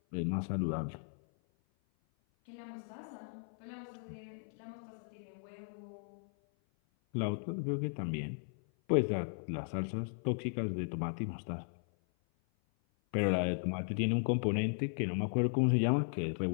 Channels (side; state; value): right; silent; 54 dB below the other